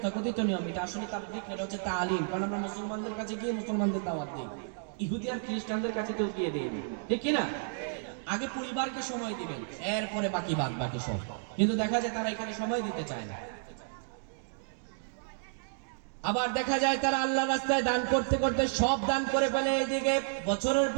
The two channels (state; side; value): silent; left; digital silence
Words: নিয়ম, এটা আসলে তাবলীগ এটা হচ্ছে তালিম, কারণ আমরা মুসলমানদের কাছে গিয়ে মুসলমানদের দাওয়াত দিই, ইহুদি আর খ্রিস্টানদের কাছে তো গিয়ে দিই, ঠিক কি না? আগে পরিবারকে সময় দিবেন, এরপরে বাকি সব। কিন্তু দেখা যায় তারা এখানে সময় দিতে চায় না। আবার দেখা যায় তারা আল্লাহ রাস্তায় দান করতে করতে সব দান করে ফেলে, এদিকে বছরের